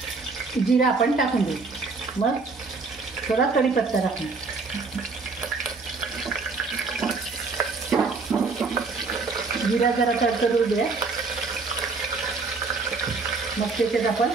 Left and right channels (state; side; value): quieter; left; 4.2 dB